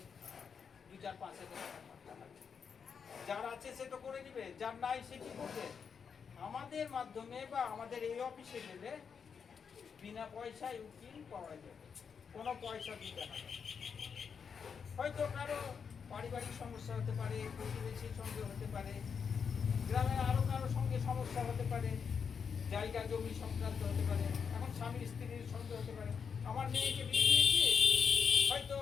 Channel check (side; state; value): right; quieter; 6.4 dB